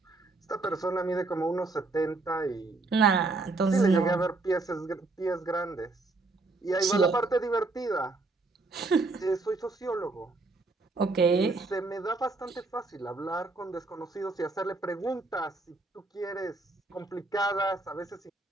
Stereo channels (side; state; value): left; quieter; 3.4 dB